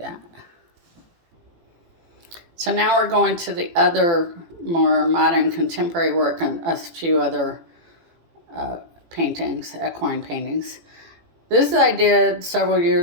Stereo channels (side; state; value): left; late; 18 ms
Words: that. So now we're going to the other more modern contemporary work and a few other paintings, equine paintings. This I did several